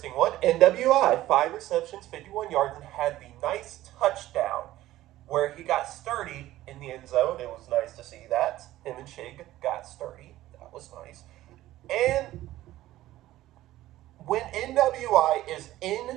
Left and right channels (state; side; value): quieter; left; 15.2 dB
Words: one. NWI, 5 receptions, 51 yards, and had the nice touchdown where he got sturdy in the end zone. It was nice to see that. Him and Chig got sturdy. That was nice. And when NWI is